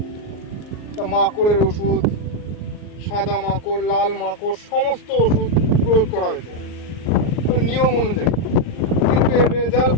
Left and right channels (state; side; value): late; right; 39 ms